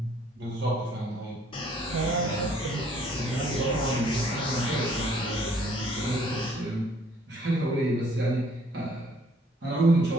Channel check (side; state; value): both; normal; correlation 0.61